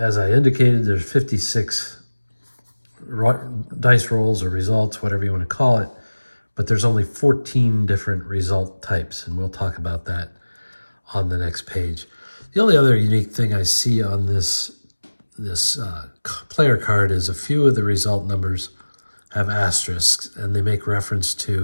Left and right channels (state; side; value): inverted; both; correlation -1.00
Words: I indicated, there's 56 dice rolls or results, whatever you want to call it, but there's only 14 different result types, and we'll talk about that on the next page. The only other unique thing I see on this player card is a few of the result numbers have asterisks, and they make reference